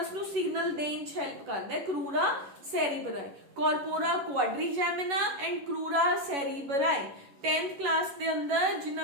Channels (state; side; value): late; left; 11 ms